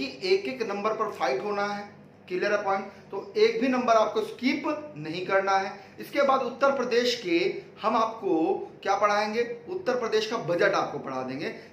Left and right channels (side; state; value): both; identical; correlation 1.00